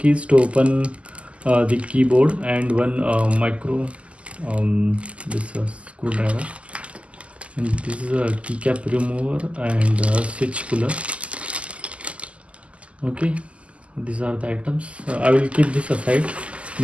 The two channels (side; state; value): left; late; 0.059 ms